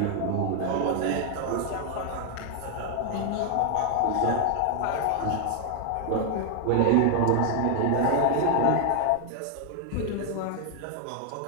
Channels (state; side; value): different; both; correlation 0.00